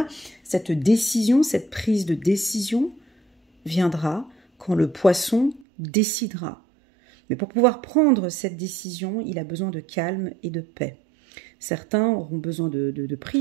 cette décision, cette prise de décision viendra quand le poisson décidera. Mais pour pouvoir prendre cette décision, il a besoin de calme et de paix. Certains auront besoin de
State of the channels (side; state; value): left; drops out; at 5.7 s